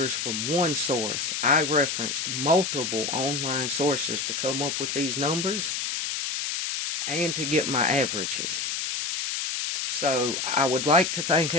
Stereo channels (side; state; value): left; noise; hiss, 2 dB below the sound